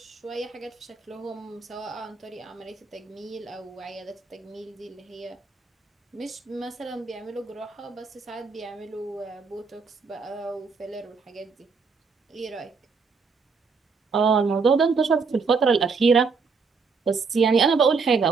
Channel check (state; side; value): quieter; left; 4.8 dB